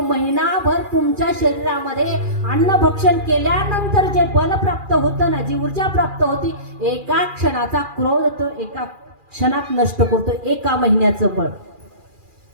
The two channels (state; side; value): late; left; 2.4 ms